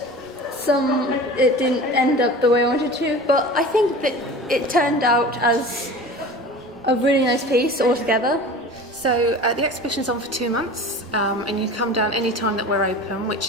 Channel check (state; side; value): normal; both; correlation 0.37